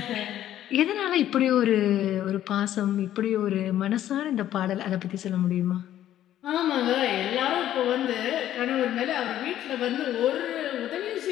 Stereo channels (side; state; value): right; quieter; 12.1 dB